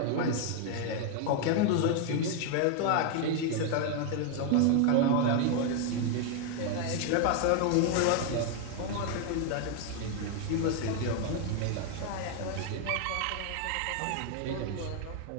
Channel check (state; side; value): different; both; correlation 0.01